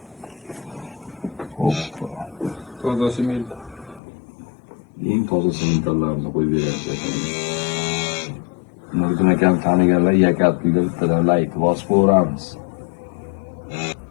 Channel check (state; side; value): drops out; right; at 4.0 s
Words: Toza sement. Eng toza sementlarni qo'yib beryapti. Nuriddin akam taniganlar Yakal pulga bittadan layk bosib qo'yamiz.